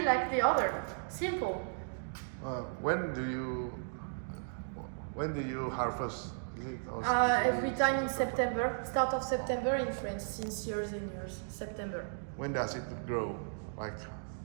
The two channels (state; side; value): silent; left; digital silence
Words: like the other. Simple. When do you harvest? Is it also Every time in September, start of September in France, since years and years. September. When does it grow? Like